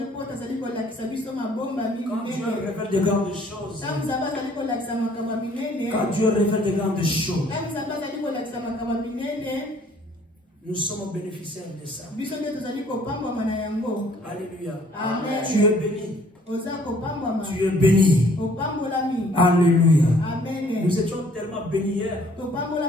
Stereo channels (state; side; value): normal; both; correlation 0.59